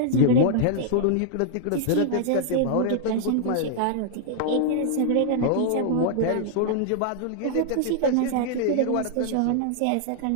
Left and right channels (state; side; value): different; both; correlation -0.01